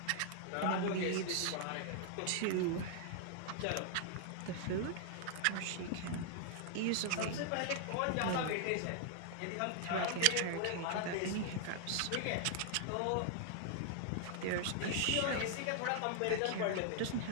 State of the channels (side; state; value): both; different; correlation 0.00